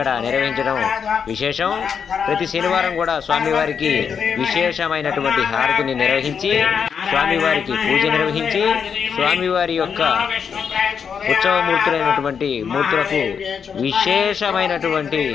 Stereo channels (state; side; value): quieter; right; 6.8 dB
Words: నిర్వహించడం విశేషం. ప్రతి శనివారం కూడా స్వామివారికి విశేషమైనటువంటి హారతిని నిర్వహించి స్వామివారికి పూజ నిర్వహించి స్వామివారి యొక్క ఉత్సవమూర్తులైనటువంటి మూర్తులకు విశేషమైనటువంటి